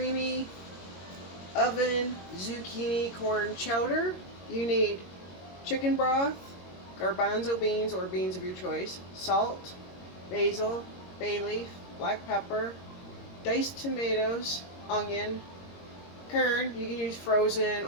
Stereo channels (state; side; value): late; right; 22 ms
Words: oven zucchini corn chowder. You need chicken broth, garbanzo beans or beans of your choice, salt, basil, bay leaf, black pepper, diced tomatoes, onion, kern, you can use frozen